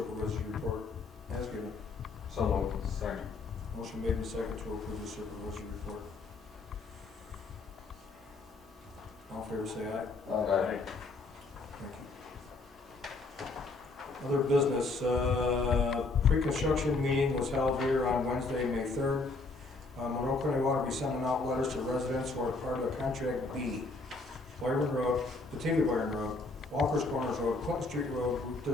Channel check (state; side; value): quieter; right; 3.6 dB